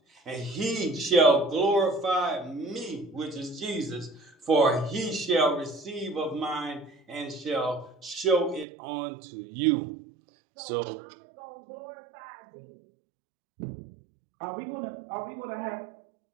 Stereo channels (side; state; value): left; drops out; at 8.7 s